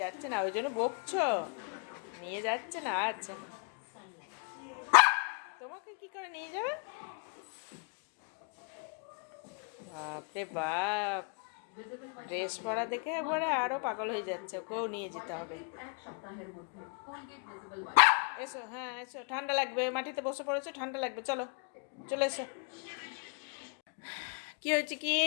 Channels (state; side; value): quieter; right; 37.1 dB